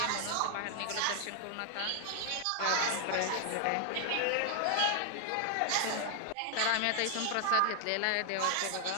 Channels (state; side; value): different; both; correlation 0.00